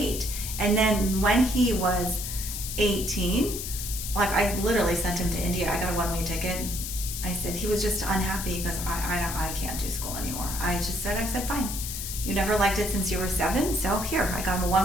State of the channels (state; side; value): noise; left; hiss, 6 dB below the sound